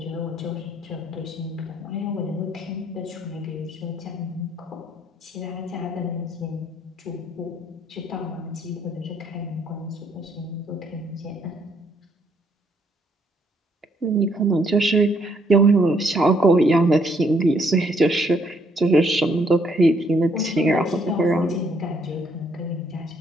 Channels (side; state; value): both; normal; correlation 0.69